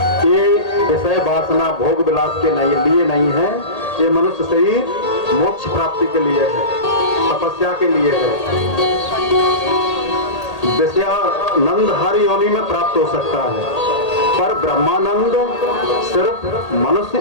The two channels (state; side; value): late; right; 1.8 ms